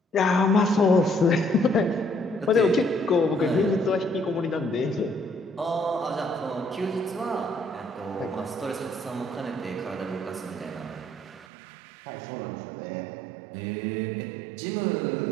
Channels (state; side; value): drops out; left; at 11.5 s